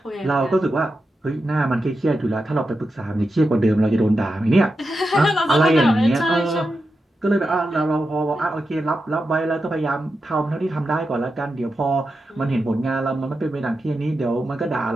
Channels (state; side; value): normal; both; correlation 0.89